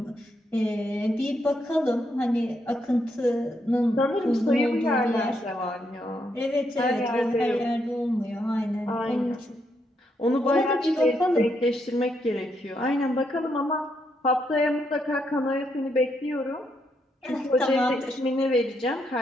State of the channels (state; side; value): normal; both; correlation 0.78